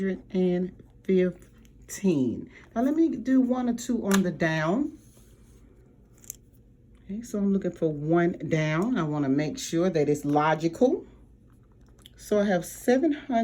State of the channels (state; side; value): identical; both; correlation 1.00